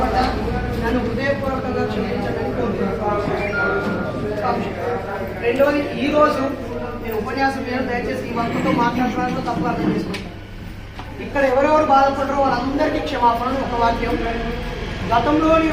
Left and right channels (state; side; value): identical; both; correlation 1.00